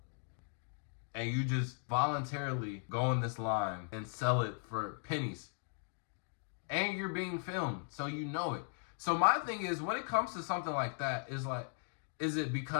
And you just voluntarily go in this line and sell it for pennies. And you're being filmed, so you know it. So my thing is, when it comes to something like that, is it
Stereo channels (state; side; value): silent; right; 53 dB below the other